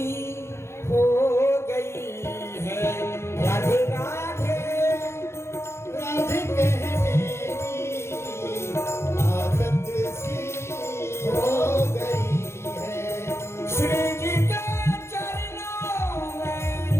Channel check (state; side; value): late; right; 0.13 ms